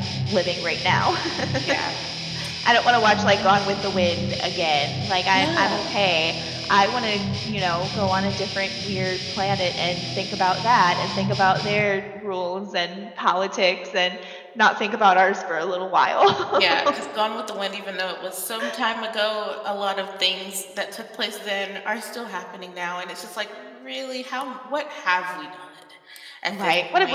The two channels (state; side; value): identical; both; correlation 1.00